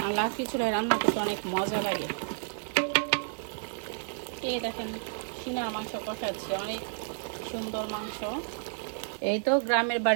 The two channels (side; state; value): left; silent; digital silence